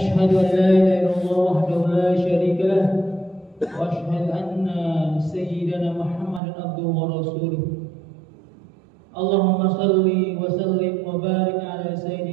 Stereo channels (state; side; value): drops out; left; at 6.4 s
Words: an la ilaha illallah wahdahu la syarika lah wa ashhadu anna sayyidana Muhammadan abduhu wa rasuluh. Allahumma salli wa sallim wa barik ala